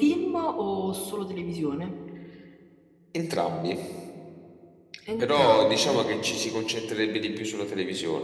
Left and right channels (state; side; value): identical; both; correlation 1.00